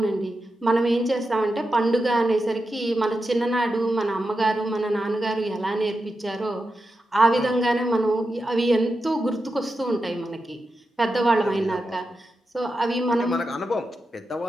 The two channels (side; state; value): both; normal; correlation 0.89